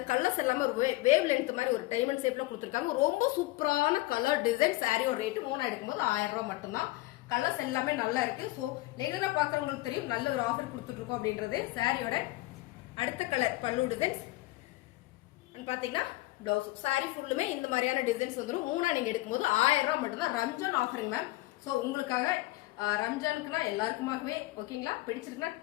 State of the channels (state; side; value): quieter; right; 19.4 dB